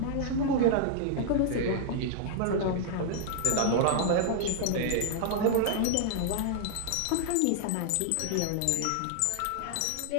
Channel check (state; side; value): different; both; correlation -0.01